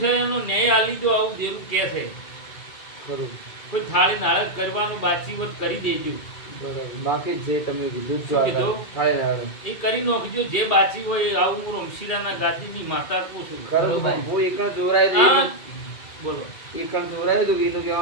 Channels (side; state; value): right; late; 2.3 ms